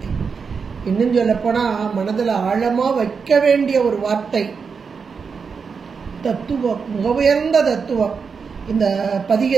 இன்னும் சொல்ல போனா மனதில் ஆழமா வைக்க வேண்டிய ஒரு வார்த்தை. தத்துவம், மிக உயர்ந்த தத்துவம். இந்த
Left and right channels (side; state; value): left; quieter; 5.6 dB